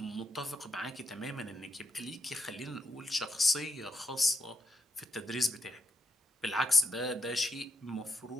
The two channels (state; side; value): normal; both; correlation 0.82